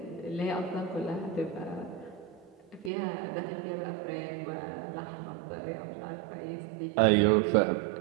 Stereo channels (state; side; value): drops out; left; at 2.9 s